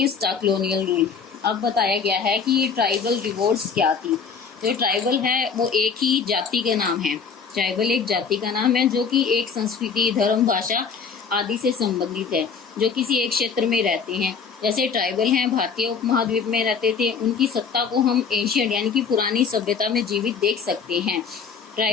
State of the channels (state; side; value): quieter; right; 5.9 dB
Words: the colonial rule. अब बताया गया है कि ये tribal revolts क्या थी। जो tribal है वो एक ही जाति का नाम है। ट्राइबल एक जाति का नाम है जो कि एक संस्कृति, धर्म, भाषा आदि से संबंधित है, जो किसी एक क्षेत्र में रहते हैं। जैसे ट्राइबल हैं भारतीय उपमहाद्वीप में रहते थे, उनकी सत्ता को हम एशियन यानी कि पुरानी सभ्यता में जीवित देख सकते हैं।